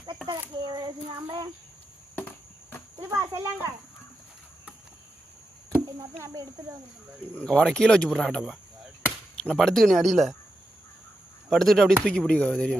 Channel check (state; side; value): normal; both; correlation 0.88